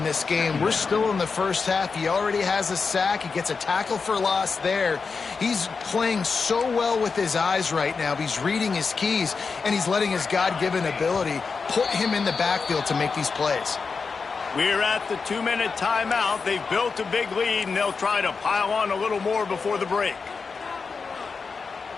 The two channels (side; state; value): right; quieter; 4.9 dB